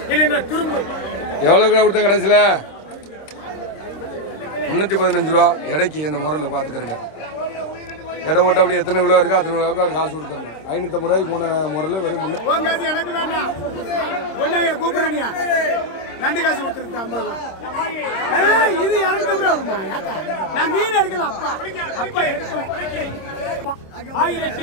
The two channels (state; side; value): late; right; 26 ms